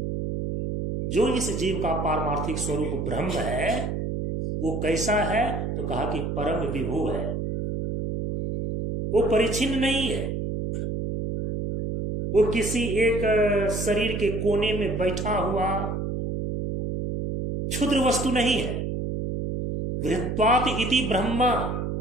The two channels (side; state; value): right; noise; hum, 3 dB below the sound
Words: जो इस जीव का पारमार्थिक स्वरूप ब्रह्म है वो कैसा है? तो कहा कि परम विभू है, वो परिच्छिन्न नहीं है, वो किसी एक शरीर के कोने में बैठा हुआ क्षुद्र वस्तु नहीं है। वृत्वात इति ब्रह्मा,